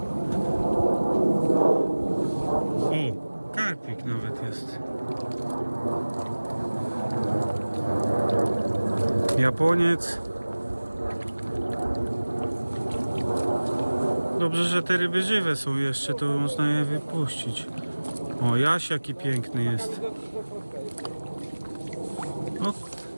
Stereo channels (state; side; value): inverted; both; correlation -1.00